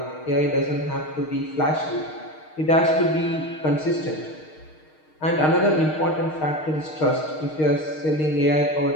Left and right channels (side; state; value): right; late; 6.5 ms